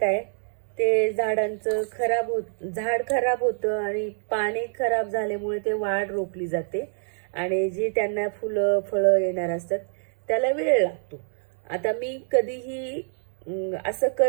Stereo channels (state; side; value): silent; left; 61 dB below the other